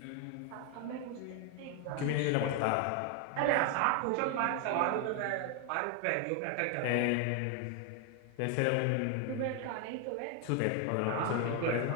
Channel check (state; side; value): different; both; correlation 0.01